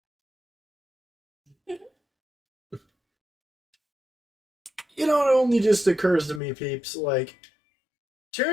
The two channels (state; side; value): drops out; right; at 6.4 s